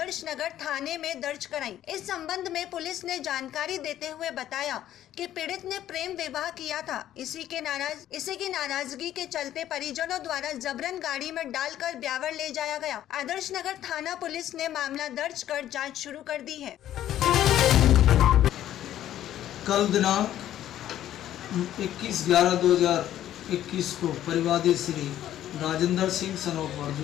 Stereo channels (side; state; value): right; quieter; 12.1 dB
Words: नगर थाने में दर्ज कराई। इस संबंध में पुलिस ने जानकारी देते हुए बताया कि पीड़ित ने प्रेम विवाह किया था। इसी की नाराजगी के चलते परिजनों द्वारा जबरन गाड़ी में डालकर ब्यावर ले जाया गया। आदर्श नगर थाना पुलिस ने मामला दर्ज कर जाँच शुरू कर दी है। कल दिनांक 21/11/2021 को परिवादी श्री राजेंद्र सिंह सनोफ